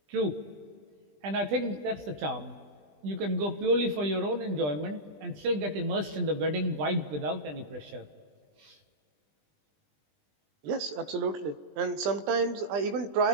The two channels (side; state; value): left; late; 20 ms